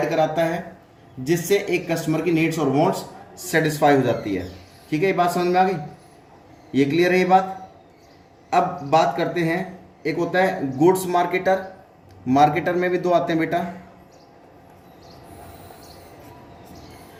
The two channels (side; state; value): both; identical; correlation 1.00